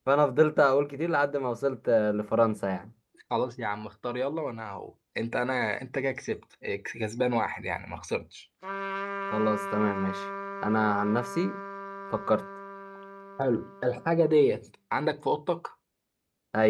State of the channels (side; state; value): both; identical; correlation 1.00